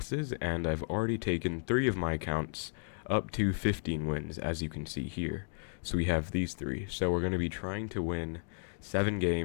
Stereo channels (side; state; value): right; silent; digital silence